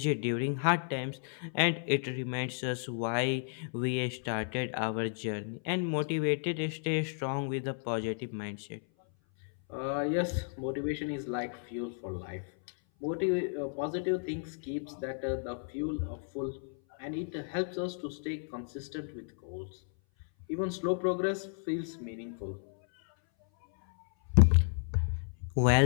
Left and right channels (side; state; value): right; silent; 56 dB below the other